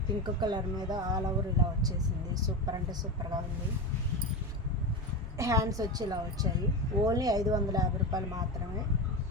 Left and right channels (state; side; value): normal; both; correlation 0.21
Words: పింక్ కలర్ మీద ఆల్ ఓవర్ ఇలా వచ్చేసింది. సూపర్ అంటే సూపర్గా ఉంది. హ్యాండ్స్ వచ్చి ఇలా వచ్చాయి. ఓన్లీ 550 రూపాయలు మాత్రమే.